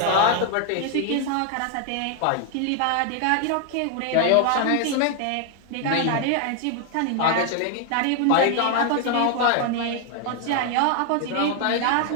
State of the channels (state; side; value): different; both; correlation 0.00